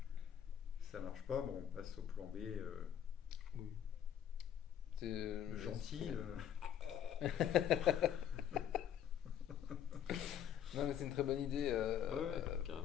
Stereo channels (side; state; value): right; quieter; 9.7 dB